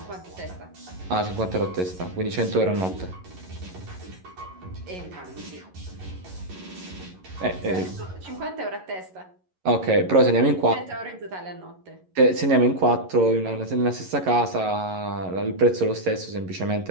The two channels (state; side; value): late; left; 11 ms